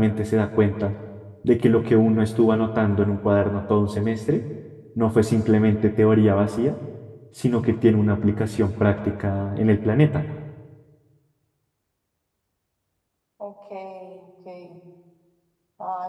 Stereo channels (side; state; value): both; identical; correlation 1.00